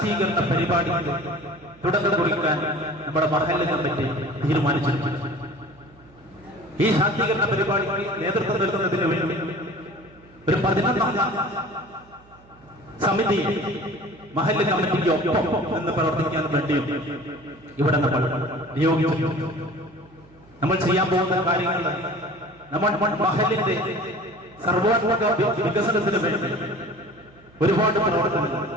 പരിപാടിക്ക് തുടക്കം കുറിക്കാൻ നമ്മുടെ മഹല്ല് കമ്മിറ്റി തീരുമാനിച്ചിട്ടുണ്ട്. ഈ ശാക്തീകരണ പരിപാടിക്ക് നേതൃത്വം നൽകുന്നതിന് വേണ്ടി ഒരു 11 സമിതി മഹല്ല് കമ്മിറ്റിക്ക് ഒപ്പം നിന്ന് പ്രവർത്തിക്കാൻ വേണ്ടിയും ഇവിടെ നമ്മൾ നിയോഗിച്ചു. നമ്മൾ ചെയ്യാൻ പോകുന്ന കാര്യങ്ങൾ നമ്മൾ മഹല്ലിന്റെ സർവോത്മക വികസനത്തിന് വേണ്ടി ഒരുപാട് പ്രവർത്തനങ്ങൾ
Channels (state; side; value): noise; right; hum, 27 dB below the sound